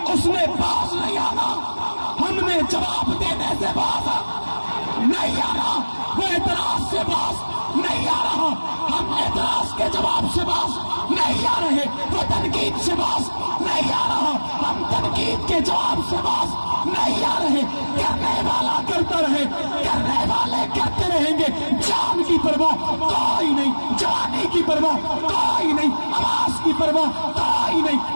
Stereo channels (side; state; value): both; inverted; correlation -1.00